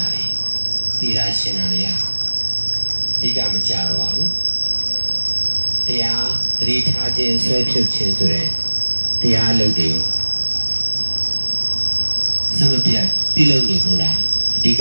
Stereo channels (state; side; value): inverted; both; correlation -1.00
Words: đấy, đi ra xin này à, đi cả mà trả rồi à, đi à, đi tham gia xoay phiếu chiến rồi, đi à lâu điều, sao mà bây giờ đi lâu nhiều không đã, đi